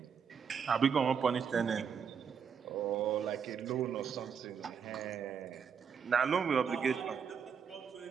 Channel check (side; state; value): left; quieter; 6.9 dB